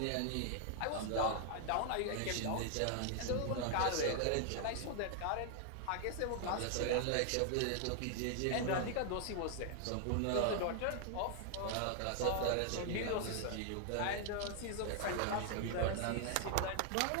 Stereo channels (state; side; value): different; both; correlation 0.00